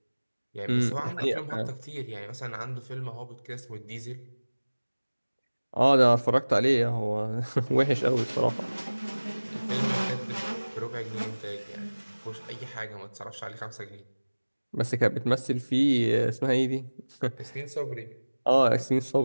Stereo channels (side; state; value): both; inverted; correlation -1.00